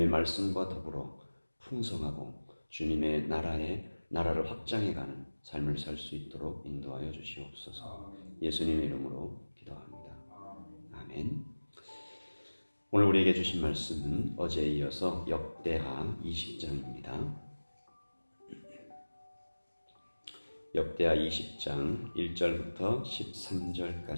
말씀과 더불어 풍성하고 주님의 나라를 확장해가는 삶을 살 수 있도록 인도하여 주시옵소서. 예수님의 이름으로 기도합니다. 아멘. 오늘 우리에게 주신 말씀은 어제에 이어서 역대하 20장입니다. 역대하 20장 1절부터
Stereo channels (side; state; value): both; inverted; correlation -1.00